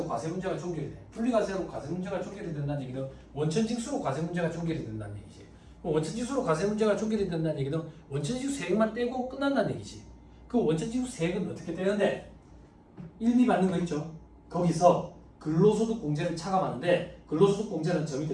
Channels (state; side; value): identical; both; correlation 1.00